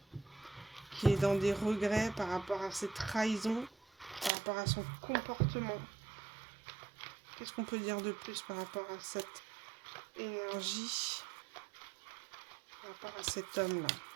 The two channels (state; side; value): drops out; left; at 4.3 s